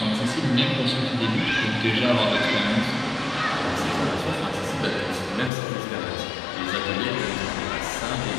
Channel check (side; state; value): right; drops out; at 5.5 s